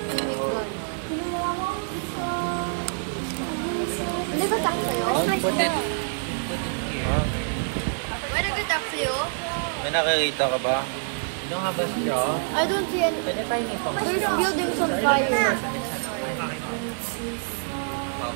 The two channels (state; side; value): silent; left; digital silence